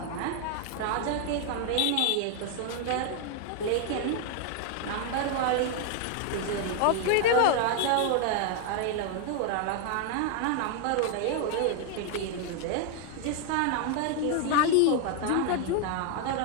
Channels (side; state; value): both; different; correlation 0.00